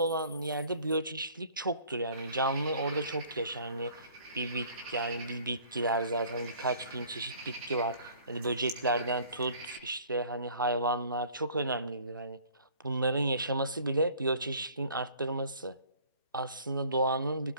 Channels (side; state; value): both; inverted; correlation -0.54